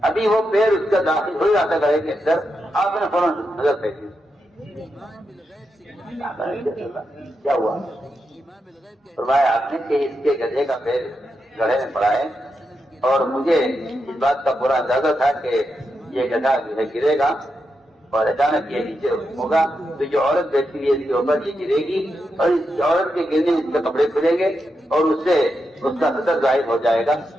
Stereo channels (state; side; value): normal; both; correlation 0.86